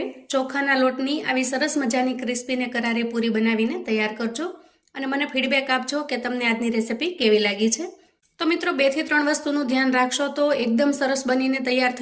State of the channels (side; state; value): both; identical; correlation 1.00